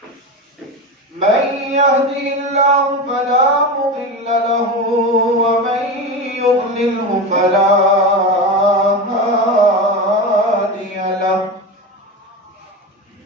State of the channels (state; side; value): normal; both; correlation 0.22